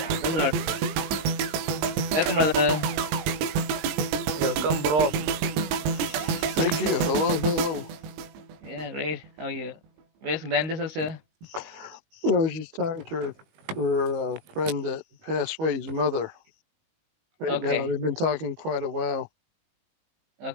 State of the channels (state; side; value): late; left; 20 ms